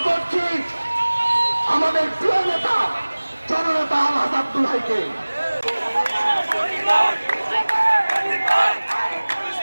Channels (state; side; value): inverted; both; correlation -1.00